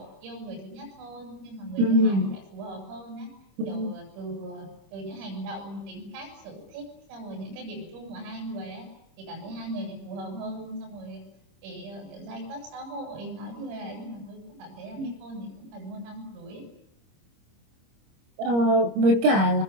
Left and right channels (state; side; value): late; left; 25 ms